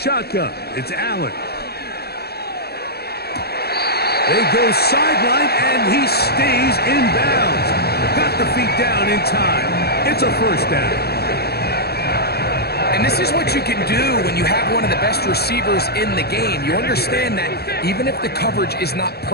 it's Allen. They go sideline, and he stays in bounds. Got the feet down in time. It's a first down. And this is what you can do when you have one of the best receivers in the game. You understand that even if the coverage is not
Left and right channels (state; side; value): late; right; 0.46 ms